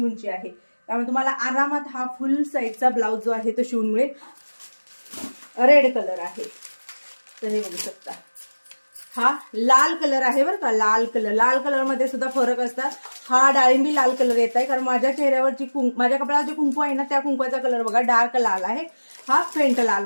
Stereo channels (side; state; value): both; inverted; correlation -1.00